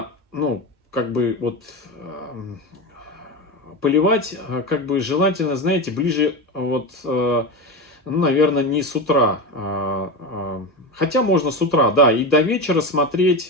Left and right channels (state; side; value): normal; both; correlation 0.21